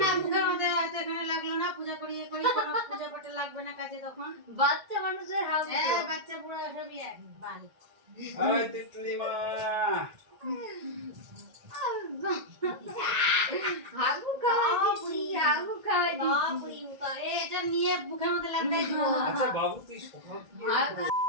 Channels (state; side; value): late; left; 1.8 ms